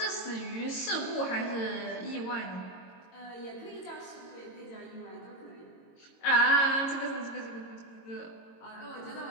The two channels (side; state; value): right; late; 22 ms